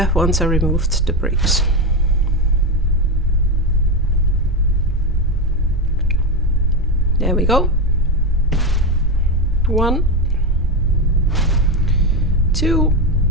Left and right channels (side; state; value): both; normal; correlation 0.13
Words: once I removed the bricks. There we go. 1, 2.